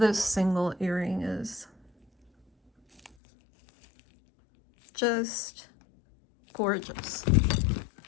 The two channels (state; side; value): drops out; right; at 3.2 s